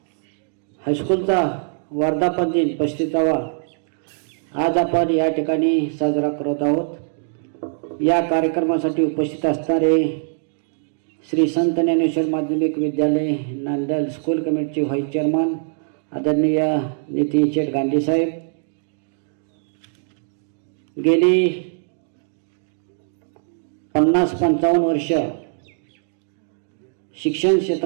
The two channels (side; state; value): left; silent; digital silence